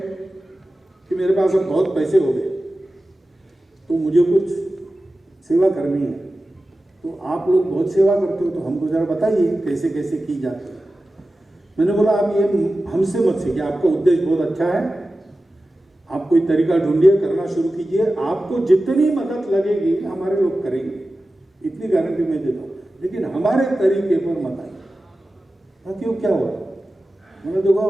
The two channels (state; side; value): normal; both; correlation 0.95